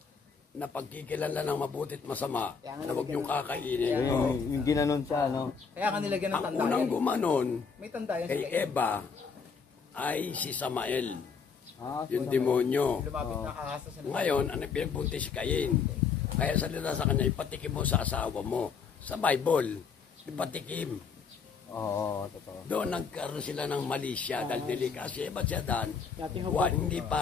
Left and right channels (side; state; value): right; quieter; 5.7 dB